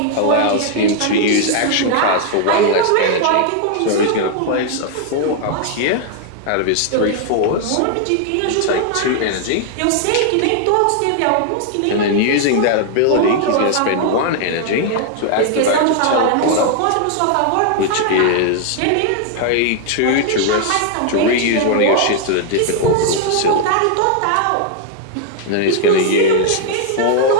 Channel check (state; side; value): different; both; correlation 0.00